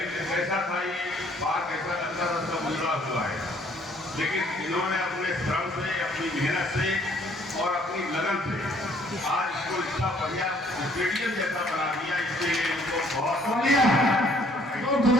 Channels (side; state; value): both; normal; correlation 0.62